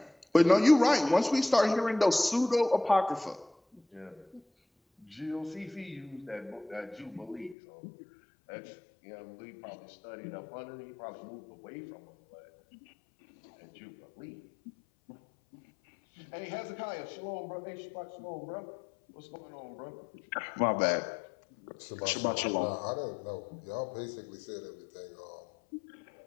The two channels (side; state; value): right; drops out; at 7.6 s